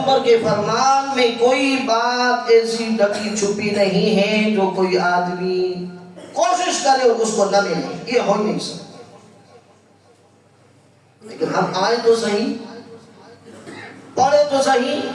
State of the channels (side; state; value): both; identical; correlation 1.00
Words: کے فرمان میں کوئی بات ایسی ڈکی چھپی نہیں ہے جو کوئی آدمی کوشش کرے اور اس کو نہ ملے، یہ ہو نہیں سکتا۔ لیکن ہم آئے تو صحیح، پڑھے تو صحیح،